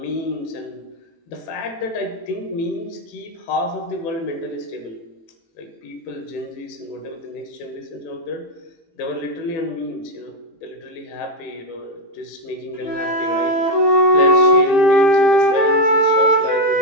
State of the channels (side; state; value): right; late; 18 ms